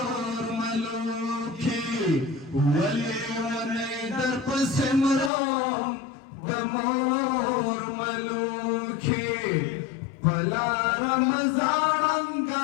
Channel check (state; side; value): drops out; right; at 5.3 s